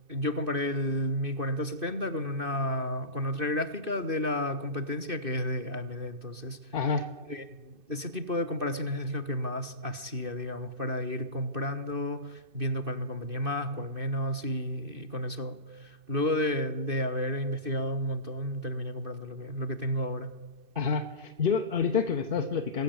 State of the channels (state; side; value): late; left; 2.6 ms